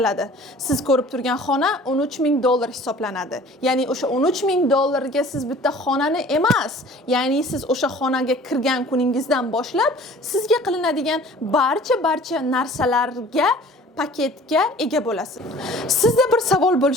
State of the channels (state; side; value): normal; both; correlation 0.48